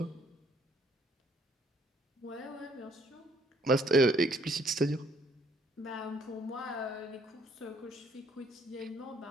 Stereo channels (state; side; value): normal; both; correlation 0.65